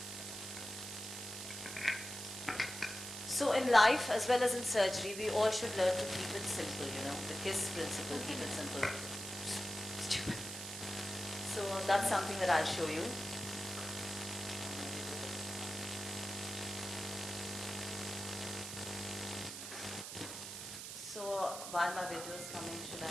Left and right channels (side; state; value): right; noise; hiss, 8 dB below the sound